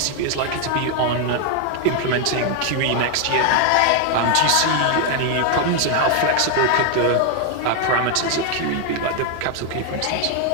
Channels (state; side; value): different; both; correlation 0.01